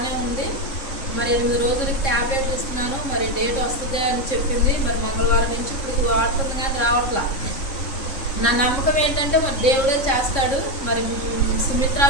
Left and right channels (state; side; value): late; right; 3.7 ms